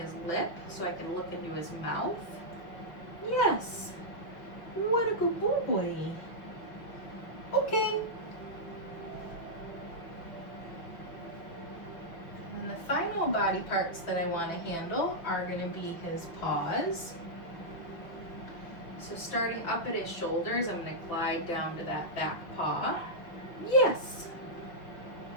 lip so I can look into his mouth. Yes. What a good boy. Okay. And the final body parts that I want to handle are going to be his paws. So starting up at his shoulders, I'm going to glide down to that back paw. Yes.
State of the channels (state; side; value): late; right; 6.1 ms